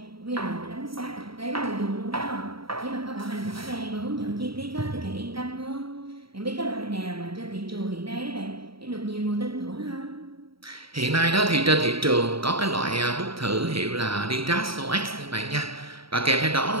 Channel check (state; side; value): late; left; 0.75 ms